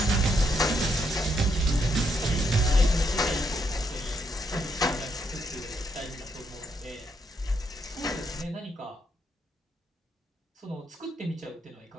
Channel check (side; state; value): both; normal; correlation 0.76